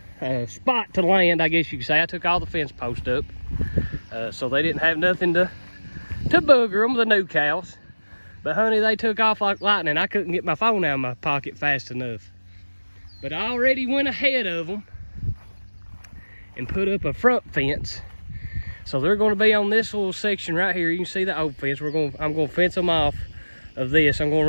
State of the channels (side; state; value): both; inverted; correlation -1.00